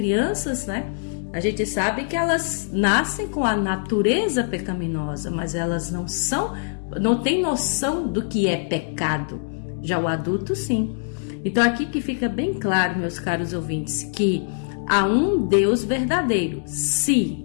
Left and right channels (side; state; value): right; silent; digital silence